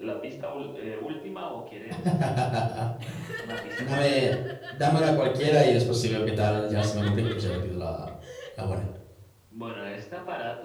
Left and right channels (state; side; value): identical; both; correlation 1.00